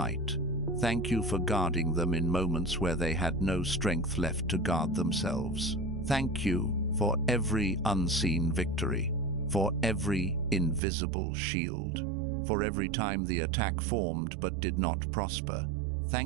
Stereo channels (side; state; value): left; drops out; at 10.8 s